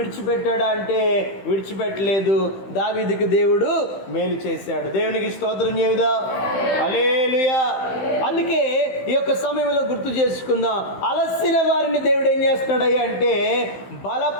అంటే విడిచిపెట్టలేదు. దావీదుకి దేవుడు మేలు చేశాడు. దేవునికి స్తోత్రం చెబుదా. హల్లెలూయా. అందుకే ఈ యొక్క సమయంలో గుర్తు చేసుకుందాం, అలసిన వారిని దేవుడు ఏం చేస్తున్నాడయ్యా అంటే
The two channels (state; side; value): late; right; 15 ms